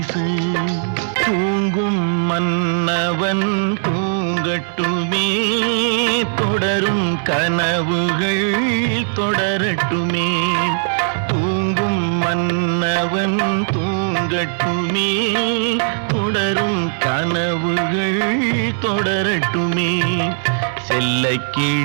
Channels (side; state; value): left; silent; 64 dB below the other